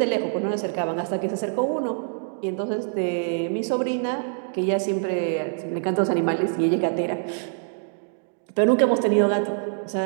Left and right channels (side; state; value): left; silent; digital silence